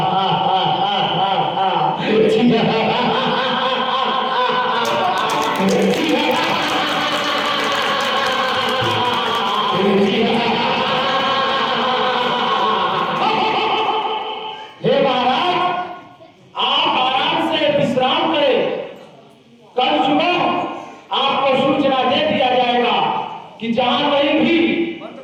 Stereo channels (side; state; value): both; identical; correlation 1.00